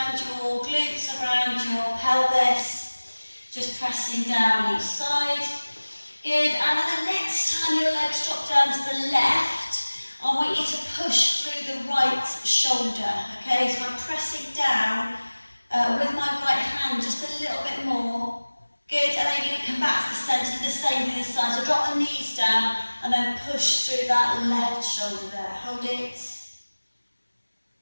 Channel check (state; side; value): inverted; both; correlation -1.00